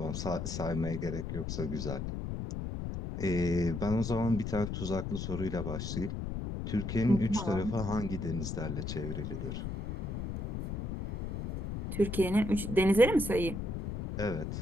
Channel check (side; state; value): left; noise; rumble, 4 dB below the sound